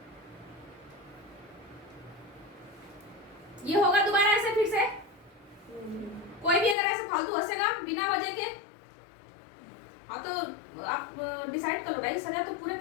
ये होगा दोबारा ऐसे फिर से? कोई भी अगर ऐसे फालतू हंसेगा बिना वजह के, हाँ तो आप डिसाइड कर लो भाई, सजा तो पूरे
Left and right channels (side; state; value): right; drops out; at 6.8 s